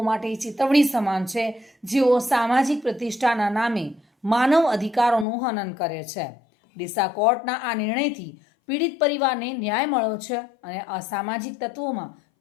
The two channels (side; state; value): right; drops out; at 5.2 s